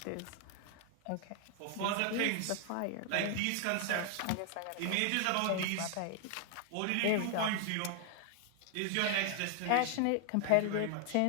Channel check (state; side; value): different; both; correlation 0.00